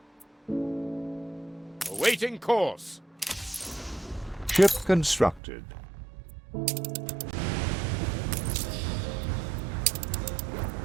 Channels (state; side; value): drops out; left; at 5.4 s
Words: Awaiting course. Ship constructed.